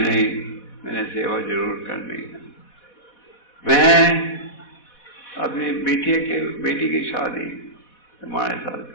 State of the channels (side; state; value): right; late; 4.1 ms